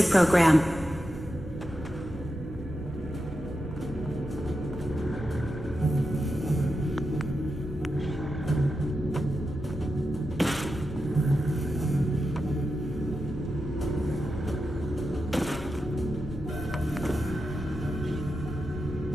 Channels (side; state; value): both; normal; correlation 0.89